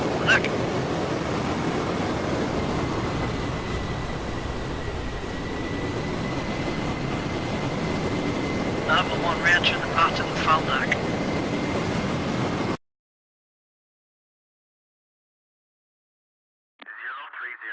Look. Number 1 re-entering the pattern and foul deck.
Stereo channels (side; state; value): both; identical; correlation 1.00